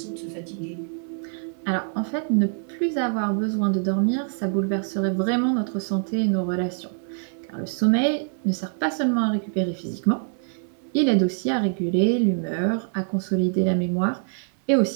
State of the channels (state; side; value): silent; left; 62 dB below the other